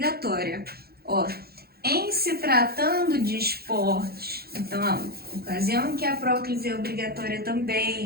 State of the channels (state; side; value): late; left; 0.45 ms